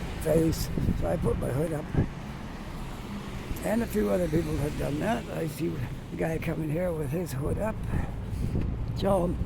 face. So I put my hood up. And a few other people have done that. I see the guy coming here with his hood up. So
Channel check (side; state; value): both; identical; correlation 1.00